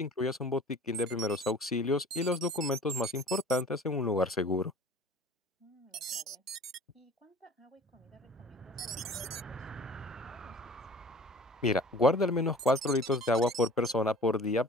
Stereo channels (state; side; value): normal; both; correlation 0.45